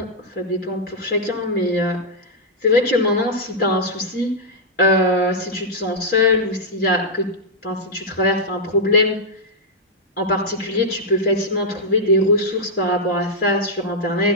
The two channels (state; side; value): normal; both; correlation -0.05